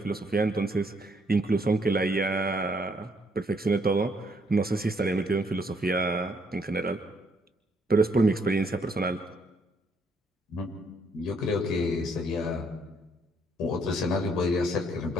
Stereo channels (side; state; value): both; normal; correlation 0.70